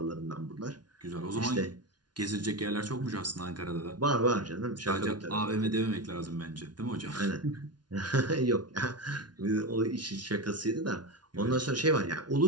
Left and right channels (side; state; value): left; late; 0.70 ms